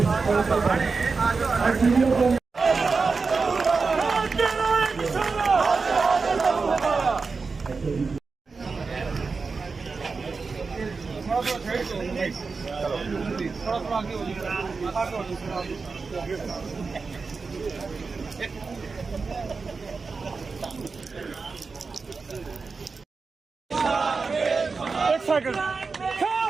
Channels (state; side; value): quieter; left; 4.5 dB